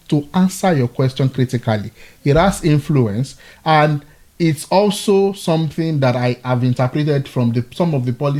to answer your question critically, it has influence, and it's also something that I have interpreted from some of the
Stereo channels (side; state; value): both; identical; correlation 1.00